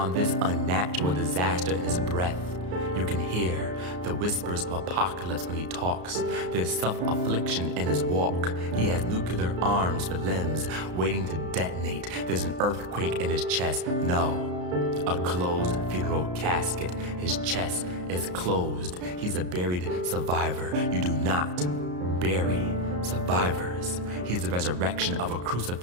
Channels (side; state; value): left; late; 33 ms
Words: this unnatural disaster in his breath. You can hear the whispers of apocalypse when he talks. There's self-affliction in his walk. He has nuclear arms for limbs waiting to detonate. There's an earthquake in his chest. No, a closed funeral casket. His chest is closed. He's a buried survivor. You do not bury survivors. He's the resurrection of a